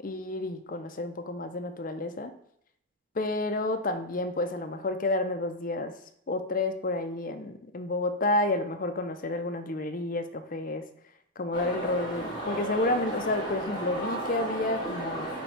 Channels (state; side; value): normal; both; correlation 0.02